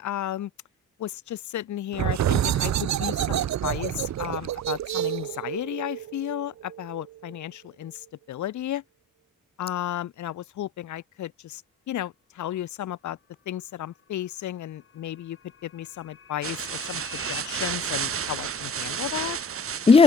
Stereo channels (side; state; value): both; normal; correlation 0.35